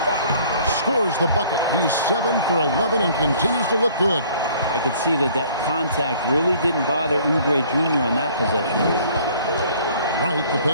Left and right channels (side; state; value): both; inverted; correlation -0.55